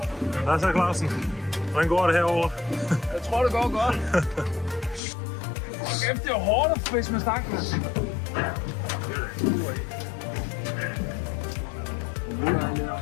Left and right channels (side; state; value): right; drops out; at 5.0 s